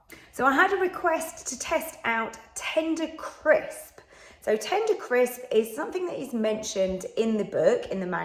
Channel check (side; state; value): both; identical; correlation 1.00